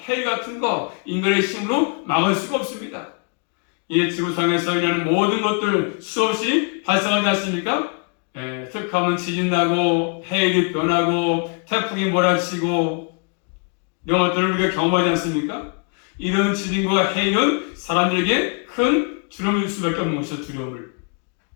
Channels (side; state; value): right; quieter; 38.2 dB